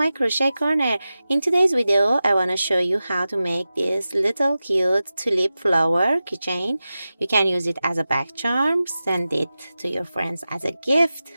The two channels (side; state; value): both; inverted; correlation -0.94